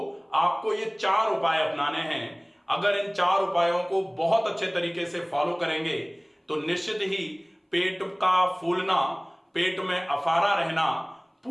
आपको ये 4 उपाय अपनाने हैं। अगर इन 4 उपायों को बहुत अच्छे तरीके से फॉलो करेंगे तो निश्चित ही पेट का फूलना, पेट में अफारा रहना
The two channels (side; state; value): both; identical; correlation 1.00